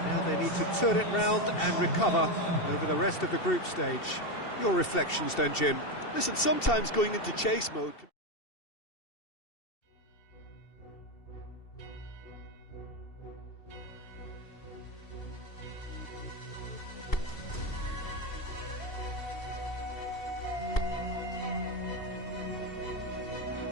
Now they need to turn it round and recover over the rest of the group stage. Your reflections then, Jim? Listen, sometimes going into chase mode...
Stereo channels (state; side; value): late; right; 2.7 ms